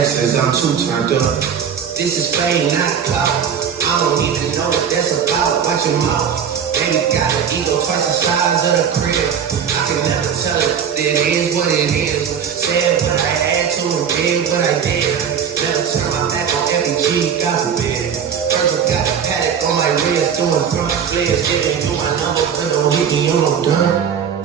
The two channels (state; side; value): quieter; left; 7.7 dB